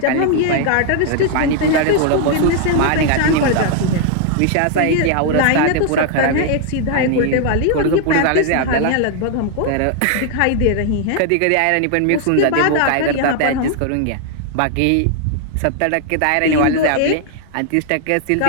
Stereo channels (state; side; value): different; both; correlation 0.00